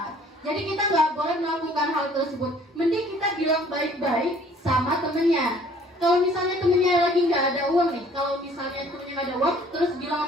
Jadi kita nggak boleh melakukan hal tersebut. Mending kita bilang baik-baik sama temennya. Kalau misalnya temennya lagi nggak ada uang nih, kalau misalnya temennya nggak ada uang, terus bilang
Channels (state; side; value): normal; both; correlation 0.56